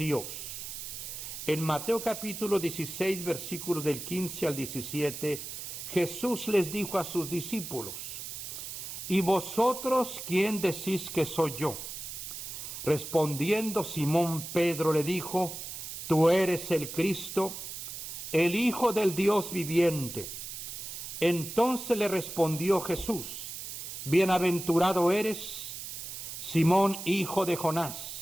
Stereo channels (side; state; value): right; noise; hiss, 8 dB below the sound